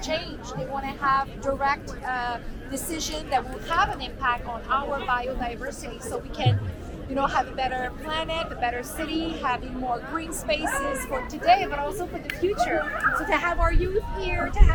change. They want to have direct decision that will have an impact on our biodiversity so we can have a better planet, a better city, having more green spaces for today, but also for the future. So to have our youth here, to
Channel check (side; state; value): both; identical; correlation 1.00